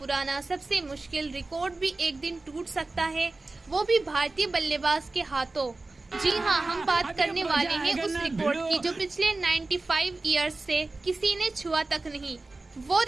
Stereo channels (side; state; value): left; quieter; 3.3 dB